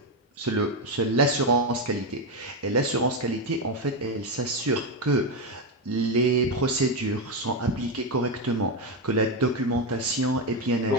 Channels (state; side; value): normal; both; correlation 0.08